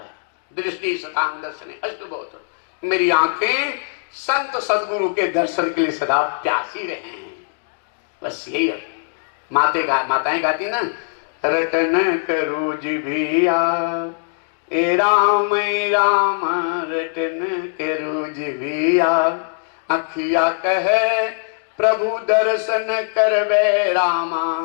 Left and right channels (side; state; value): right; silent; digital silence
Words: दृष्टि सतांग दर्शने अस्तु बहुत, मेरी आंखें संत सदगुरु के दर्शन के लिए सदा प्यासी रहे हैं। बस यही है। माताएं गाती ना, रटन करो जिभिया ए राम रटन करो जिभिया, अखिया कहे प्रभु दर्शन करबे रामा,